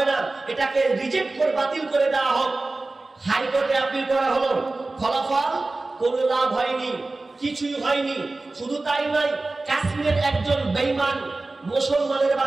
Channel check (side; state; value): left; quieter; 3.2 dB